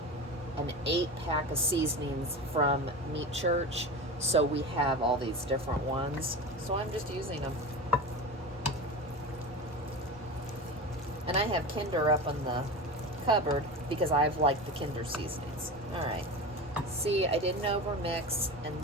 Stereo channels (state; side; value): normal; both; correlation 0.27